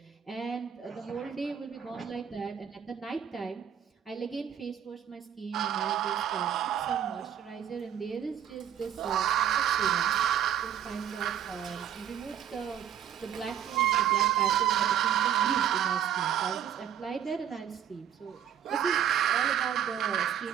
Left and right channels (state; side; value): quieter; left; 9.7 dB